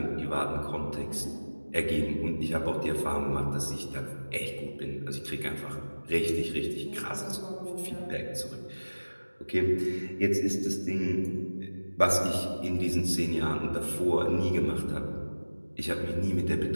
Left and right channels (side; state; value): both; inverted; correlation -1.00